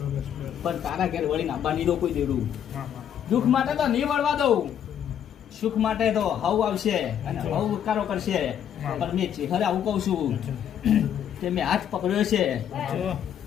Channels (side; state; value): right; quieter; 9.4 dB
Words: પણ તારા ઘેર વળીને આંબા નહીં દો કોઈ દેડું. દુઃખ માટે તો નહીં વળવા દઉં, સુખ માટે તો હવ આવશે અને હવ ઉકારો કરશે. પણ મેં ચેહરે આવું કહું છું કે મેં હાથ પકડ્યો છે